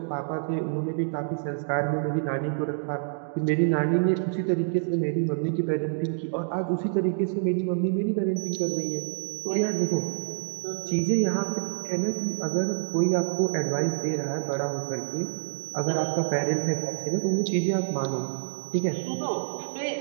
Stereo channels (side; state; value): left; silent; digital silence